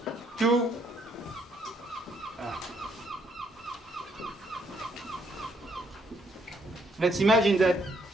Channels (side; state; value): both; normal; correlation 0.71